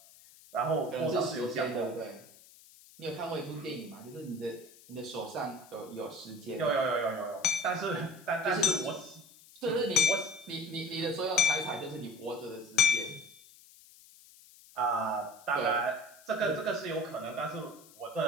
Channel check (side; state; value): left; noise; hiss, 23 dB below the sound